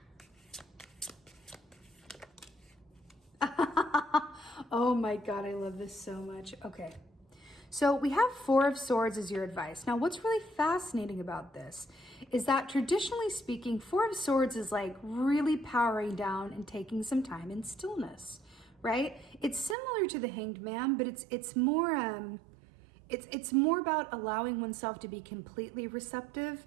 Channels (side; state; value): left; drops out; at 19.8 s